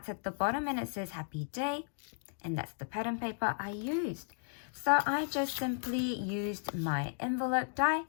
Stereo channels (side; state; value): right; silent; digital silence